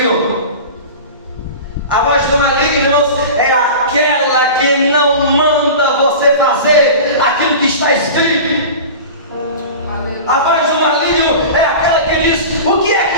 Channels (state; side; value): inverted; both; correlation -0.33